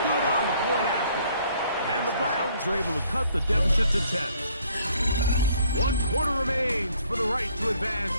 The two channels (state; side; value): inverted; both; correlation -0.63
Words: Good on the point after. And the Browns are able to cut the deficit to 10. 1 quarter remains for the right to advance